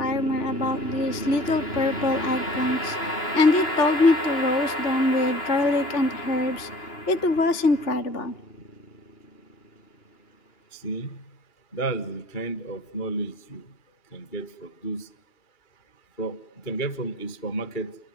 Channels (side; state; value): right; late; 2.8 ms